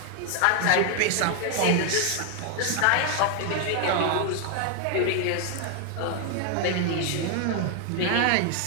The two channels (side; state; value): both; different; correlation 0.00